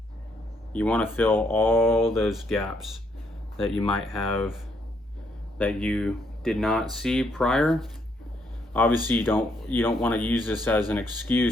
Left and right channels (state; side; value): normal; both; correlation 0.73